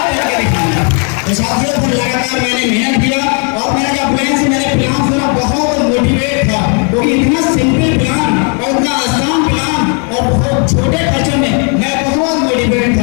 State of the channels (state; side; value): quieter; right; 39.0 dB